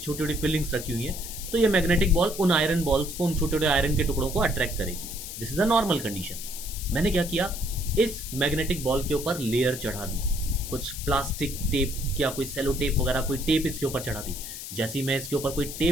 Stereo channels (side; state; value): left; noise; hiss, 9 dB below the sound